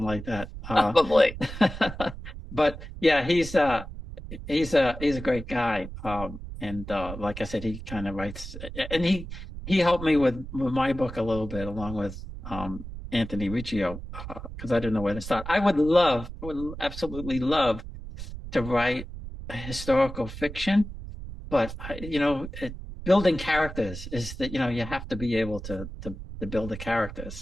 like that. Probably. But yeah, he's a great guy. And like I said, he kind of writes, and he helped me with my book a little bit, along with Anthony Riccio, because I didn't know where to start. I would absolutely love to write a historical fiction, but building characters is that you have to be able to build the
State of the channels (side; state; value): right; noise; rumble, 10 dB below the sound